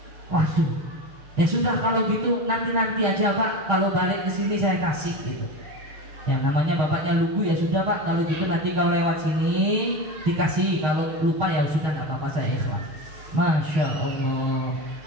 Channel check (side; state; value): left; late; 6.4 ms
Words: Waduh. Ya sudah kalau gitu nanti aja Pak, kalau balik ke sini saya kasih gitu. Ya namanya bapaknya lugu, ya sudah Pak, kalau gitu nanti kalau lewat sini dikasih, kalau lupa ya sudah nggak apa-apa, saya ikhlas. Masya Allah,